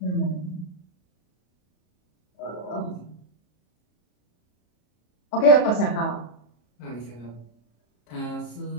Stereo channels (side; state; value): right; late; 34 ms